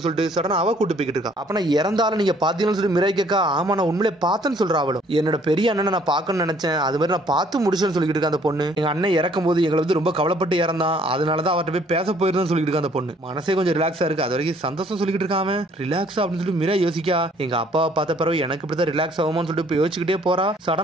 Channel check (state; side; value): normal; both; correlation 0.61